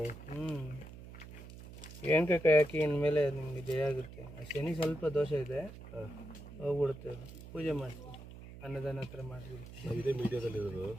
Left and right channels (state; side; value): noise; right; hum, 14 dB below the sound